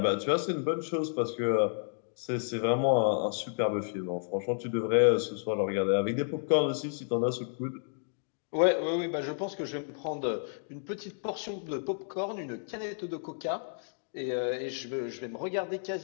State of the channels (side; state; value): right; silent; digital silence